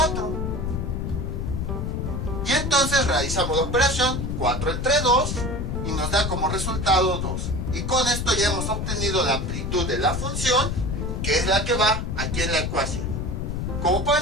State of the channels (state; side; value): noise; left; rumble, 2 dB below the sound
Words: Y entonces realizamos la operación 4 entre 2 y nos da como resultado 2. Y con esto ya hemos obtenido la amplitud de la función, que es la que va aquí en la ecuación. Como